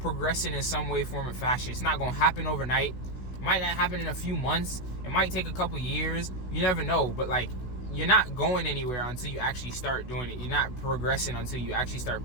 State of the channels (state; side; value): late; right; 16 ms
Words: in some way, form, or fashion, it's not gonna happen overnight. Might not happen in a few months. It might take a couple years. You never know. But like, you're not going anywhere until you actually start doing it. You're not progressing until you actually start